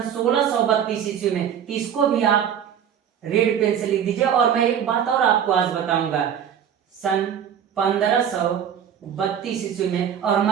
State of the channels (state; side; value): quieter; left; 8.7 dB